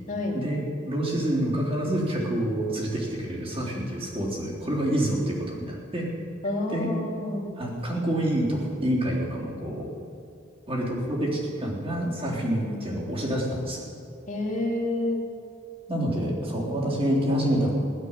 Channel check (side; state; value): both; normal; correlation 0.70